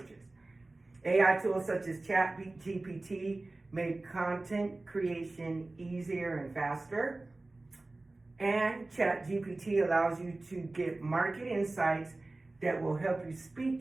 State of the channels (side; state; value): left; quieter; 3.0 dB